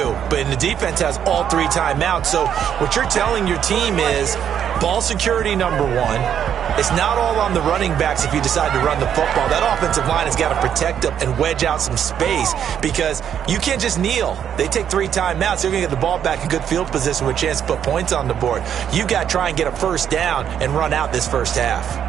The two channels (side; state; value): left; quieter; 9.0 dB